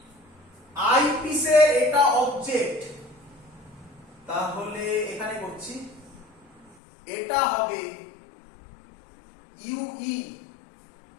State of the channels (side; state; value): right; drops out; at 6.8 s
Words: আইপিসের এটা অবজেক্ট, তাহলে এখানে করছি এটা হবে UE